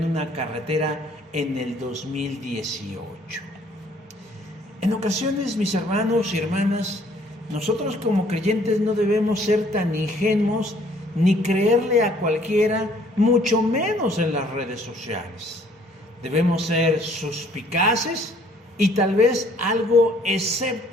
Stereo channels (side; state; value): both; normal; correlation 0.60